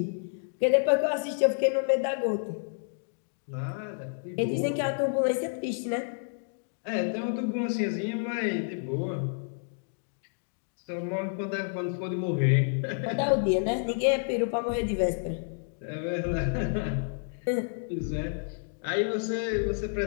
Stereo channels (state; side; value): silent; right; digital silence